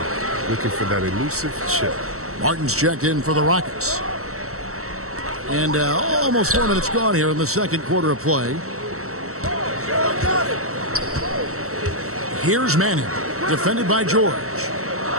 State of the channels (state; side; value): late; left; 0.64 ms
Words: looking for that elusive chip. Martin's checked in for the Rockets. And almost 4 minutes gone here in the second quarter of play. Here's Manning, defended by George.